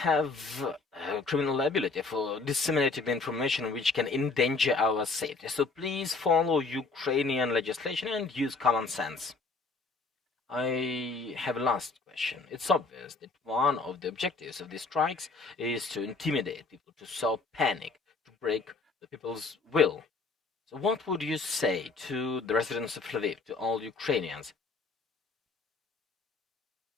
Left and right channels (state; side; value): quieter; right; 4.0 dB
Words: have criminal liability for disseminating the information which can endanger our safety. So please follow Ukrainian legislation and use common sense. I have a last question. It's obvious that one of the objectives of these strikes is to intimidate people, to sow panic, to break the people's will. So what would you say to the residents of Lviv, to all Ukrainians?